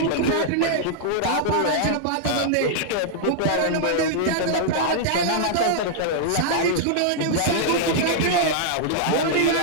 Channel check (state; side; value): different; both; correlation -0.01